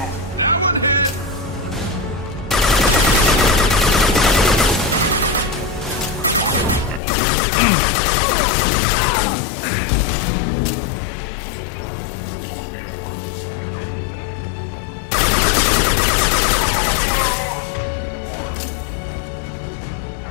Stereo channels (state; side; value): drops out; right; at 7.0 s